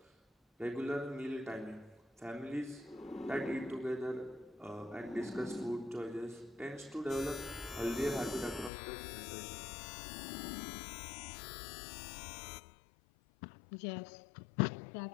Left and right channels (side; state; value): right; drops out; at 8.7 s